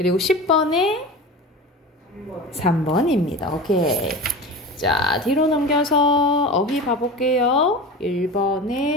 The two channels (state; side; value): normal; both; correlation 0.31